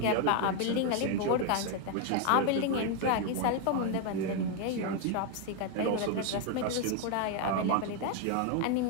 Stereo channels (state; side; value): different; both; correlation 0.01